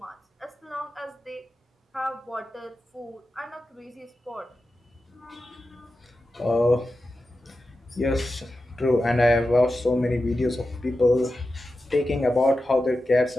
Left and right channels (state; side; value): normal; both; correlation 0.92